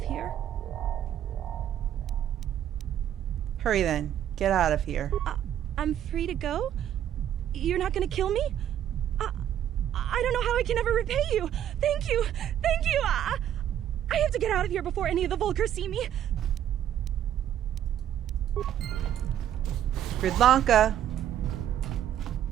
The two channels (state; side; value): quieter; left; 10.7 dB